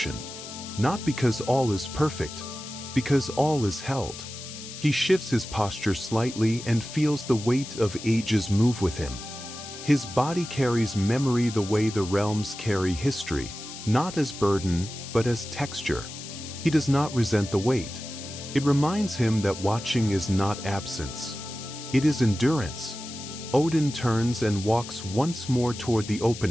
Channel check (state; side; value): noise; left; hiss, 12 dB below the sound